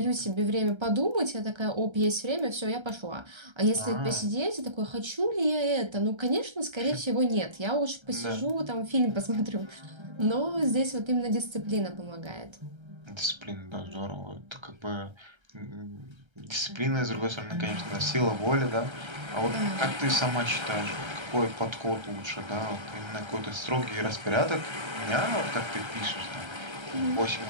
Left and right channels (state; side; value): late; left; 1.3 ms